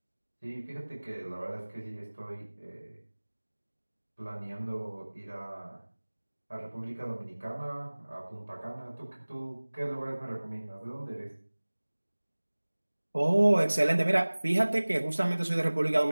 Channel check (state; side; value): inverted; both; correlation -1.00